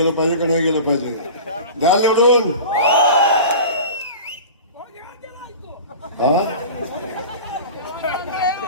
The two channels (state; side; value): inverted; both; correlation -0.35